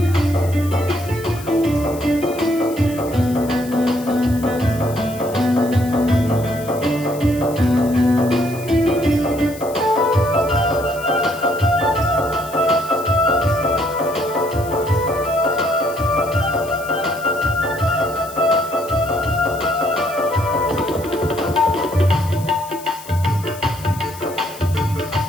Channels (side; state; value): left; noise; hiss, 17 dB below the sound